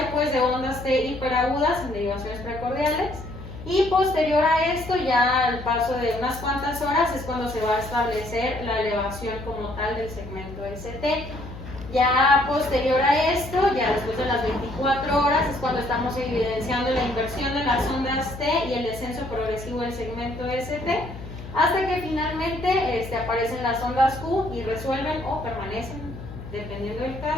pues de ondas T hiperagudas en derivaciones precordiales. Y posterior a esto, ya al paso de unas cuantas horas, es cuando se va a establecer la elevación como tal del segmento ST. Ya posterior a esto, ya después de las 24 horas, es cuando estamos evidenciando la inversión de las ondas T y el descenso progresivo del segmento ST, hasta que finalmente aparecen las ondas Q y resuelven o permanecen, dependiendo del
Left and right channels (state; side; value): noise; left; hum, 12 dB below the sound